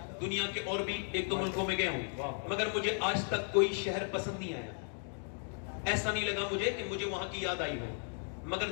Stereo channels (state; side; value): silent; right; 54 dB below the other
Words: دنیا کے اور بھی 1-2 ملکوں میں گیا ہوں، مگر مجھے آج تک کوئی شہر پسند نہیں آیا، ایسا نہیں لگا مجھے کہ مجھے وہاں کی یاد آئی ہو۔ مگر